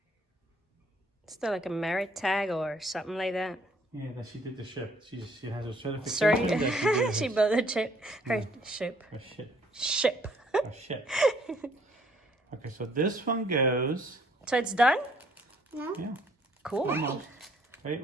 Still like a merit tag or something like that. Yeah, that she did the ship. She has a certification. Sorry, that she did she her- built a ship. Her ship. her ship. Ship. A ship. Okay, so this one goes. So it's done? No? Yeah. Cool. Almost. Wait.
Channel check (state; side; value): normal; both; correlation 0.63